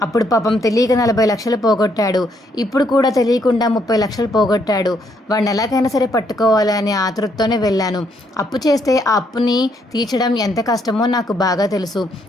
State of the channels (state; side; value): normal; both; correlation 0.72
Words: అప్పుడు పాపం తెలియక 40 లక్షలు పోగొట్టాడు, ఇప్పుడు కూడా తెలియకుండా 30 లక్షలు పోగొట్టాడు. వాడిని ఎలాగైనా సరే పట్టుకోవాలి అనే ఆతృతతోనే వెళ్ళాను. అప్పు చేస్తే ఆ అప్పుని తీర్చడం ఎంత కష్టమో నాకు బాగా తెలుసు.